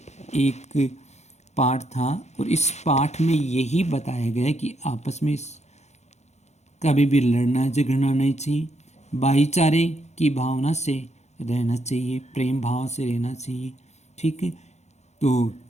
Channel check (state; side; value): late; right; 0.33 ms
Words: एक पाठ था, और इस पाठ में यही बताया गया है कि आपस में कभी भी लड़ना झगड़ना नहीं चाहिए, भाईचारे की भावना से रहना चाहिए, प्रेम भाव से रहना चाहिए। ठीक है, तो